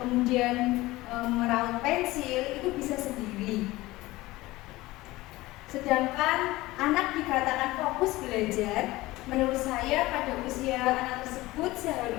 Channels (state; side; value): quieter; right; 19.0 dB